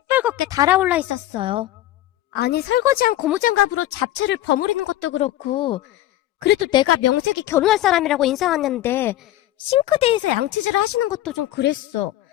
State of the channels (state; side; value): quieter; right; 14.4 dB